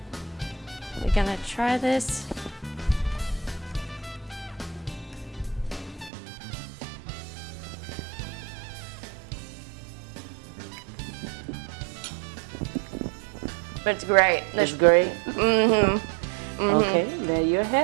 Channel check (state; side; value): drops out; left; at 6.1 s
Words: We're gonna try this. But it's great. It's great? Mm-hmm. Okay, there you